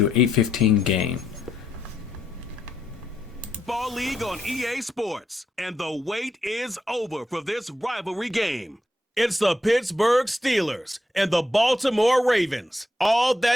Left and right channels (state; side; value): normal; both; correlation 0.80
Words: to do an 8:15 game. Ball League on EA Sports, and the wait is over for this rivalry game. It's the Pittsburgh Steelers and the Baltimore Ravens. All